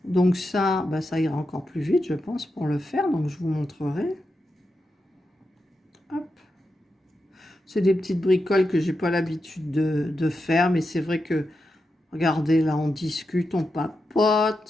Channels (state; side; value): normal; both; correlation 0.88